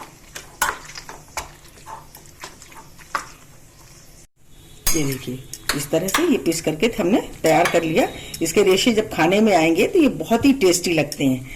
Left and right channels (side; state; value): both; identical; correlation 1.00